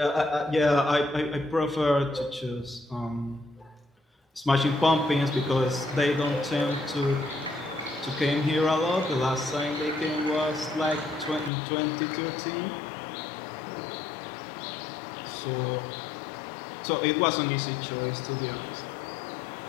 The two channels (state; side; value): drops out; right; at 11.5 s